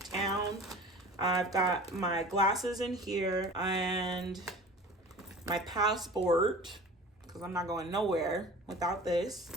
I've got my glasses in here and my passport, because I'm not going nowhere without this.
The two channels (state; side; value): normal; both; correlation 0.40